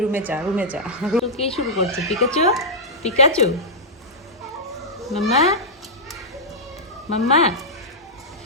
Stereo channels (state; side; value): normal; both; correlation -0.09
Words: রুমে যা, রুমে যা। কে শুরু করছে? পিকাচু, পিকাচু, মাম্মা, মাম্মা।